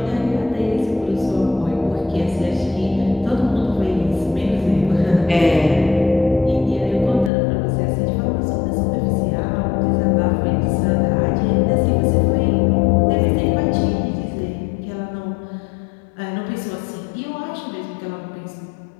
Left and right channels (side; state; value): right; drops out; at 7.3 s